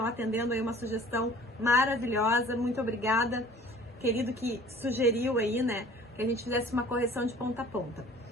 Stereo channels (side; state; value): both; normal; correlation 0.48